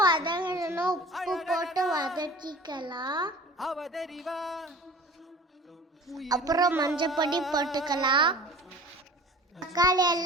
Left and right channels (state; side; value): normal; both; correlation 0.42